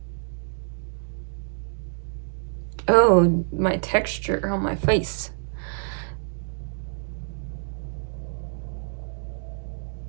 Oh, my texture on my face.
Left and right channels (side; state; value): left; silent; digital silence